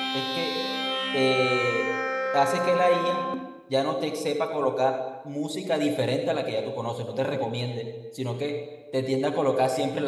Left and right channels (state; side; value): identical; both; correlation 1.00